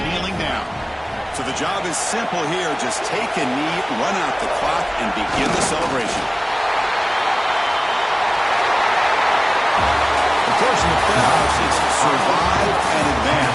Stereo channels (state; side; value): identical; both; correlation 1.00